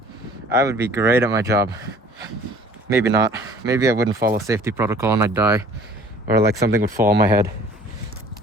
I would be great at my job. Maybe not. Maybe I wouldn't follow safety protocol and I'd die. Or like something would fall on my head.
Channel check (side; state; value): both; normal; correlation 0.51